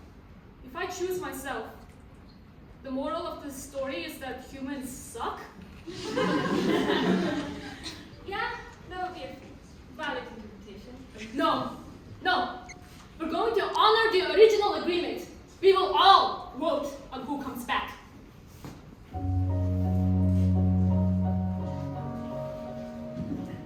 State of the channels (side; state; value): both; identical; correlation 1.00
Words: If I choose myself, the moral of the story is that humans suck? Yeah, that would be a valid interpretation. No. We're going to honor the original agreement. We will all vote on who comes back.